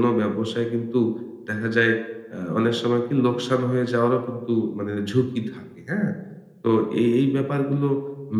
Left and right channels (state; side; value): identical; both; correlation 1.00